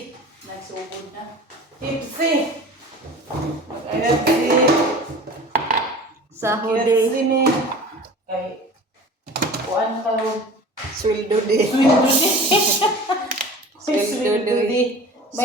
Nagsugod na. Tipsy. Mag-ayat kasi. Sahod Tipsy me. Kay, kuan ka ron. Sweldo di. Sweldo di.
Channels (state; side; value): normal; both; correlation 0.40